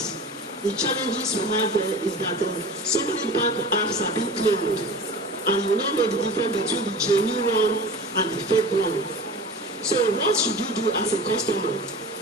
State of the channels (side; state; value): both; normal; correlation 0.36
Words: The challenges we have there is that so many bank apps are being cloned, and you don't know the difference between the genuine one and the fake one. So what should you do as a customer?